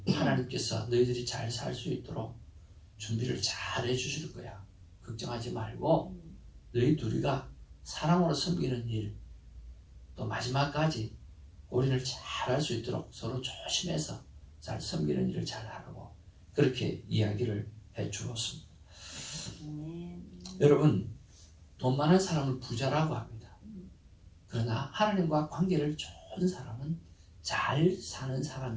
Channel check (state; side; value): identical; both; correlation 1.00